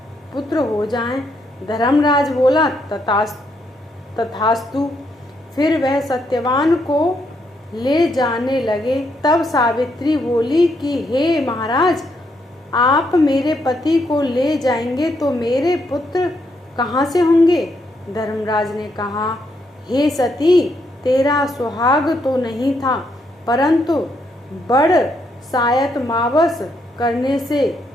पुत्र हो जाएं। धर्मराज बोला, तथास्तु। फिर वह सत्यवान को ले जाने लगे। तब सावित्री बोली कि हे महाराज, आप मेरे पति को ले जाएंगे तो मेरे पुत्र कहाँ से होंगे? धर्मराज ने कहा, हे सती, तेरा सुहाग तो नहीं था, परंतु बड़ सायत मावस करने से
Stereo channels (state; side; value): normal; both; correlation 0.76